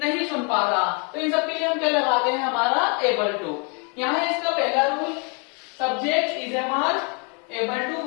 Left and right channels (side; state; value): right; quieter; 35.7 dB